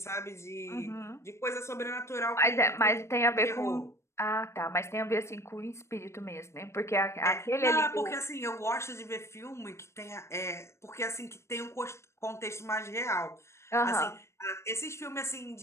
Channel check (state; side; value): late; right; 0.13 ms